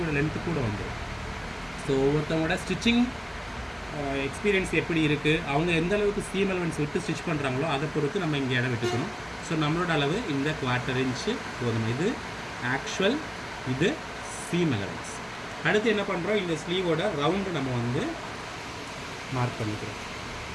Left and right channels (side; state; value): both; identical; correlation 1.00